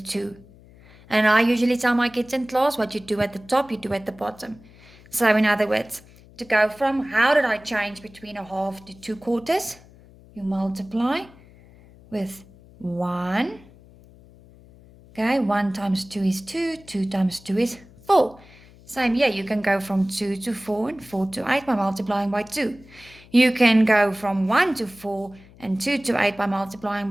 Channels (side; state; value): left; noise; hum, 24 dB below the sound